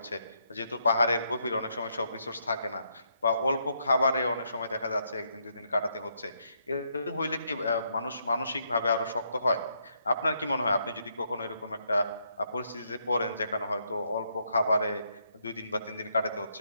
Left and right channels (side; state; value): both; inverted; correlation -0.76